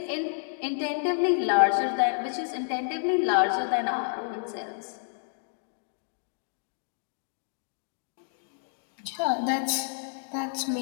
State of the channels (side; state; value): right; silent; digital silence